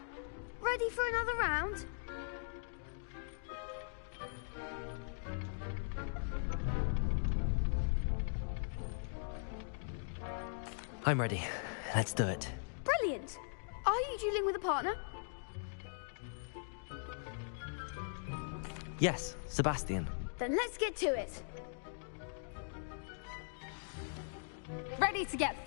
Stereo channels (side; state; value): right; silent; digital silence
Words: Ready for another round? I'm ready. Let's do it. Brilliant. Are you dueling with a partner? Yes, Sebastian. Then let's get to it. Ready to get